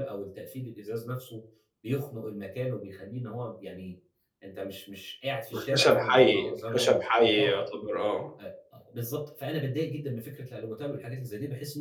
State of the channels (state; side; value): identical; both; correlation 1.00